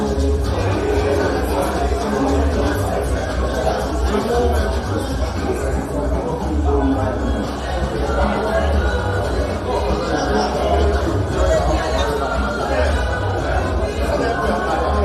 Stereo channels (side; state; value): both; identical; correlation 1.00